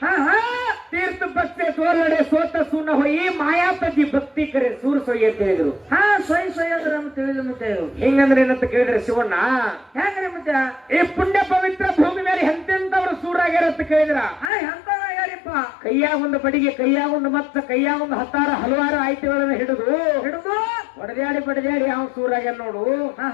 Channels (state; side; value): drops out; right; at 14.5 s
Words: ತೀರ್ಥ ಪಕ್ಷೆ ತೋಲಡೆ ಸೋತ ಸುನ ಹೊಯಿ, ಮಾಯಾಪತಿ ಭಕ್ತಿ ಕರೆ ಸೂರ್ ಸೊಯ್ ಅಂತ ಹೇಳಿದ್ರು. ಸೊಯ್ ಅಂದ್ರೆ ತಿಳಿದ್ರು. ಮತ್ತೆ ಹಿಂಗಂದ್ರೆ ಏನಂತ ಕೇಳಿದ್ರೆ ಶಿವಣ್ಣ, ಹೆಂಗ್ರಿ? ಮತ್ತೆ ಈ ಪುಣ್ಯ ಪವಿತ್ರ ಭೂಮಿ ಮೇಲೆ ಎಂತೆಂತವ್ರು ಸೂರಾಗ್ಯಾರ ಅಂತ ಕೇಳಿದ್ರ ಎಂತಾರಿಪ್ಪ? ಕೈಯಾಗ ಒಂದು ಬಡಿಗೆ, ಕೈಯಾಗ ಒಂದು ಮತ್ತ, ಕೈಯಾಗ ಒಂದು ಹಲವಾರು ಆಯ್ಕೆಗಳನ್ನ ಹಿಡಿದು ಬಡದ್ಯಾಡಿ ಅವ್ ಸೂರಾಗ್ಯಾರ ನೋಡು.